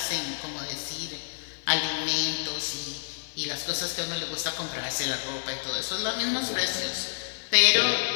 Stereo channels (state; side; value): silent; right; digital silence